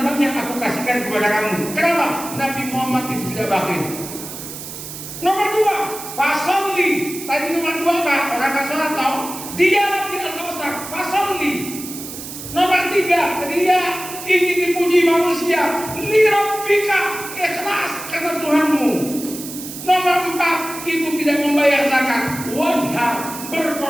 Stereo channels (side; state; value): right; noise; hiss, 10 dB below the sound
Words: banyak aku kasihkan kepada kamu. Kenapa? Nabi Muhammad itu tidak bakhil. Nomor 2, fasolli. Tadi nomor 2 apa? Orang kan sholat tau? Dijawab di Al-Kautsar, fasolli. Nomor 3, dia ingin dipuji manusia. Lirabbika, ikhlas karena Tuhanmu. Nomor 4, itu tidak membayar zakat. Wanhar,